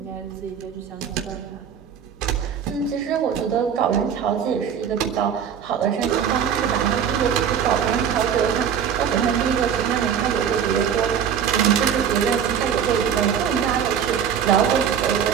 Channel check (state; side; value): quieter; left; 8.1 dB